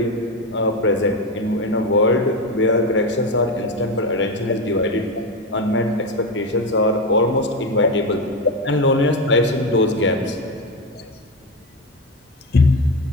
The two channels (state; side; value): normal; both; correlation 0.17